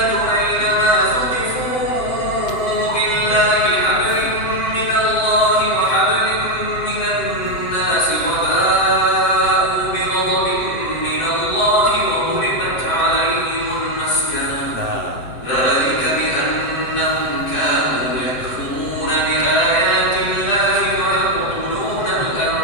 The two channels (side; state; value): right; late; 7.8 ms